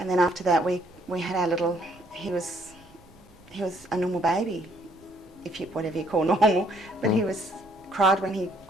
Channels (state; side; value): noise; right; rumble, 27 dB below the sound